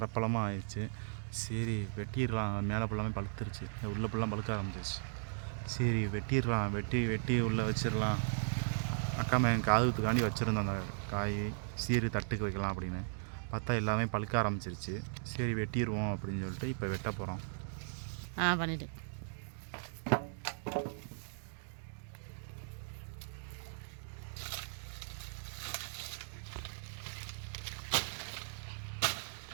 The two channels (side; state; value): left; silent; digital silence